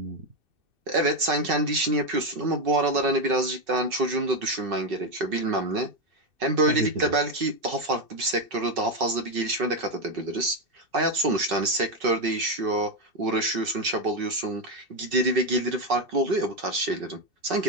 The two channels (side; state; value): left; late; 2.6 ms